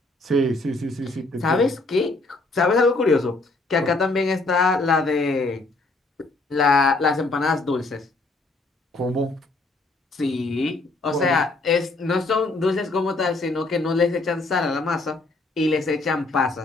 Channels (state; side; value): quieter; right; 3.2 dB